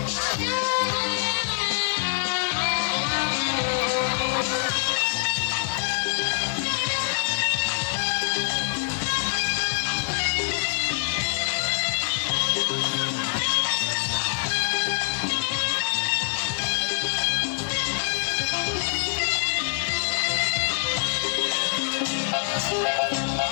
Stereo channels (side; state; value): right; silent; digital silence